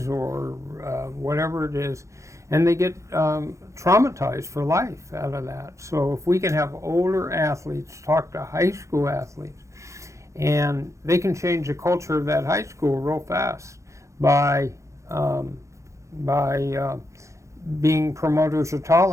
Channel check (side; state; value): left; late; 0.15 ms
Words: or whatever it is, and they get traumatized for life out of that. So if we can have older athletes talk to high school athletes, and they can change the culture of that high school real fast by being promoters of